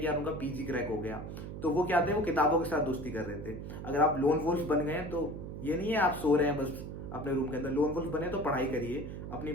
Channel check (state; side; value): noise; right; hum, 8 dB below the sound